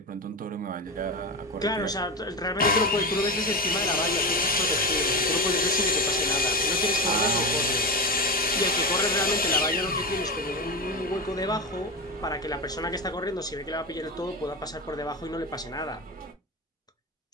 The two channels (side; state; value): both; normal; correlation 0.19